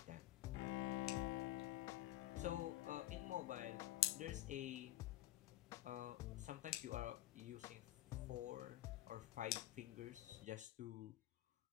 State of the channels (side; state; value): right; quieter; 14.7 dB